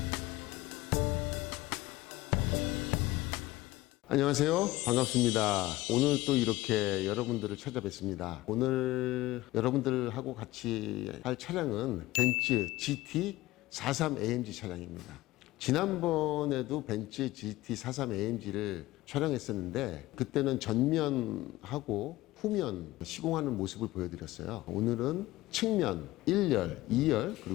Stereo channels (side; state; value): right; quieter; 17.8 dB